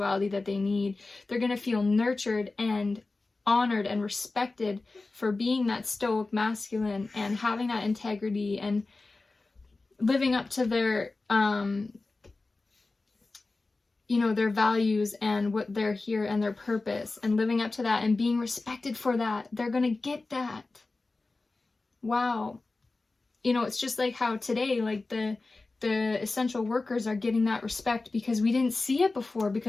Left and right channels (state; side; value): quieter; right; 3.5 dB